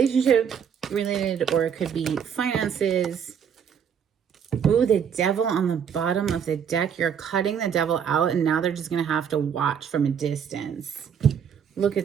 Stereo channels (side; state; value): left; quieter; 7.7 dB